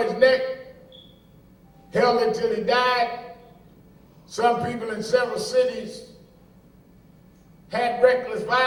neck, held it till he died. Some people in several cities had reckless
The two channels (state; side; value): identical; both; correlation 1.00